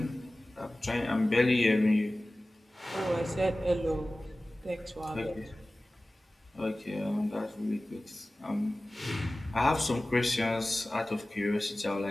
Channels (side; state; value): both; normal; correlation 0.97